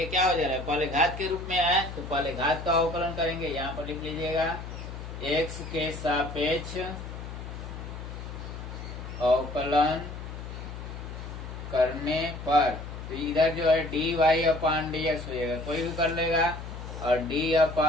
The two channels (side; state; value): left; noise; hum, 9 dB below the sound